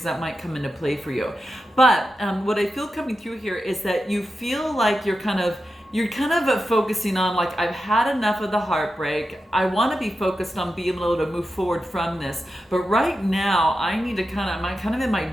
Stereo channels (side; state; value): both; normal; correlation 0.90